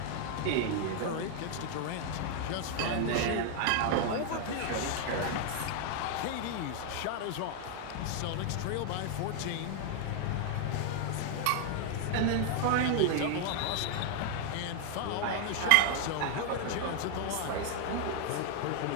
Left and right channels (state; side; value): different; both; correlation 0.00